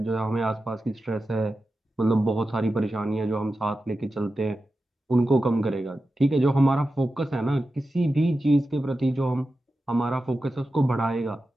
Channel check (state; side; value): normal; both; correlation 0.92